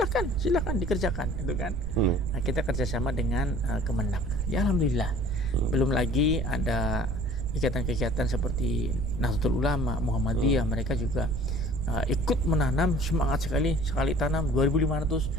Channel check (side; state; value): right; noise; rumble, 3 dB below the sound